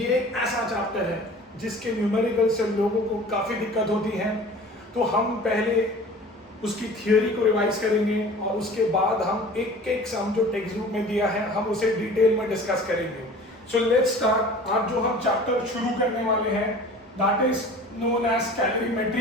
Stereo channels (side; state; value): both; normal; correlation 0.43